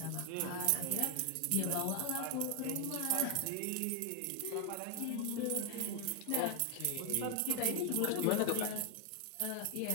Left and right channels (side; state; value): both; different; correlation 0.00